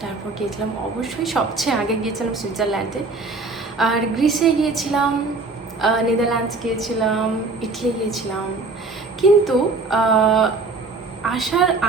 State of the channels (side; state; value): left; quieter; 3.7 dB